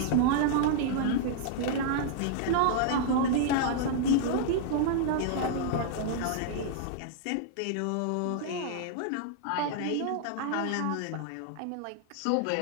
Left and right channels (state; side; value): different; both; correlation -0.01